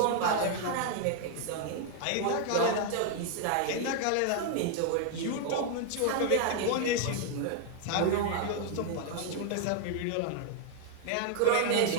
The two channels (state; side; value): different; both; correlation 0.00